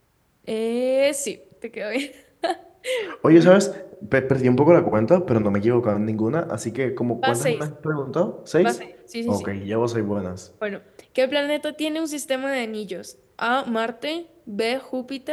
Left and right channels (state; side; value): identical; both; correlation 1.00